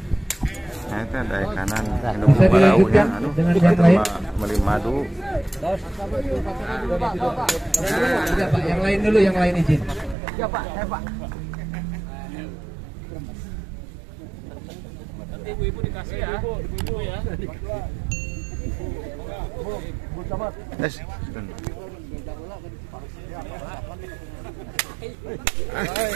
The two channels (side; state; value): left; drops out; at 10.2 s